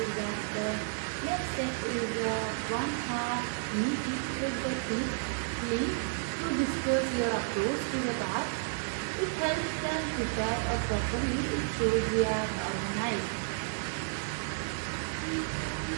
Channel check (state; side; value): silent; left; digital silence